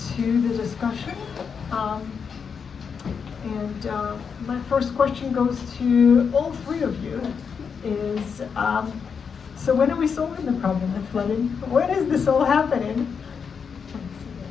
to the discussion. My first question goes to all three of you. Is so when are we solving the problem of flooding? When is this all happening?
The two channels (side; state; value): right; quieter; 6.3 dB